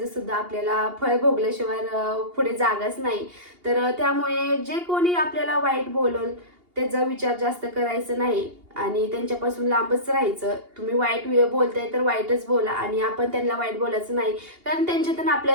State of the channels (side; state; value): left; late; 2.8 ms